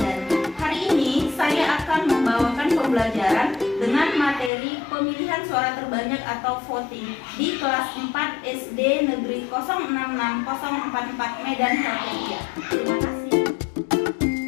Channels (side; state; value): right; drops out; at 4.5 s